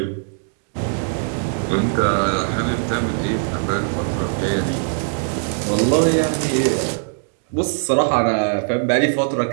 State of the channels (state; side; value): silent; left; digital silence